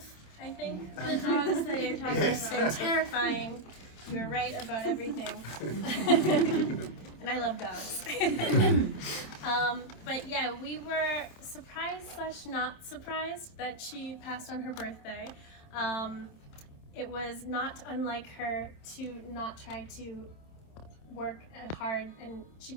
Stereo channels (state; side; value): late; right; 27 ms